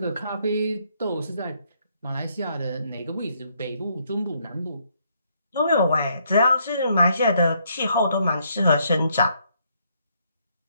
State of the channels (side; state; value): both; inverted; correlation -0.71